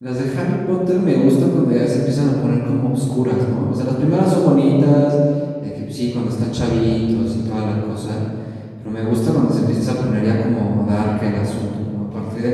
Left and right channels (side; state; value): both; identical; correlation 1.00